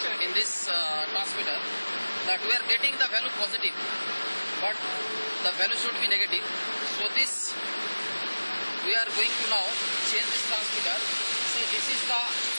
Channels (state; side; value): inverted; both; correlation -1.00